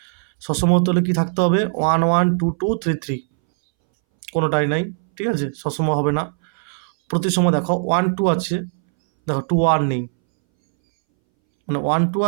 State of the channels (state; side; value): silent; left; 64 dB below the other